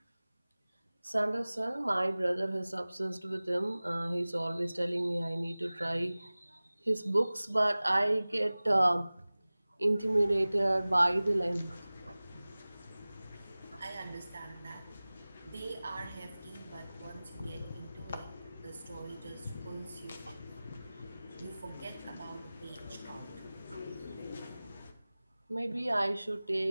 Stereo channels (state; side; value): inverted; both; correlation -0.98